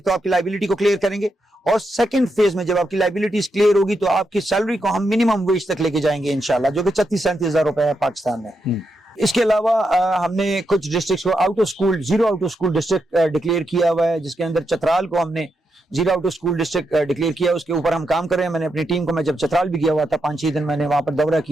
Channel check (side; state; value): both; normal; correlation 0.84